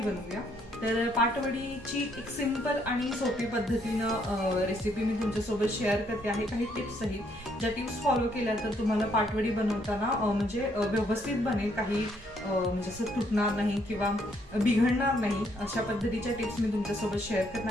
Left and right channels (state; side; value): normal; both; correlation 0.70